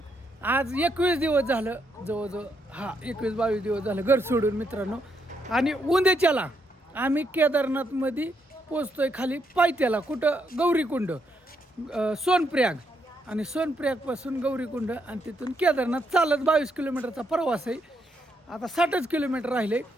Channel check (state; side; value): normal; both; correlation 0.77